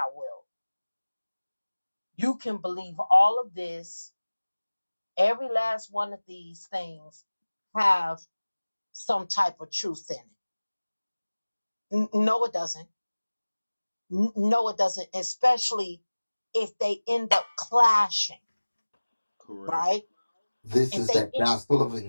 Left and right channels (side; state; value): both; inverted; correlation -1.00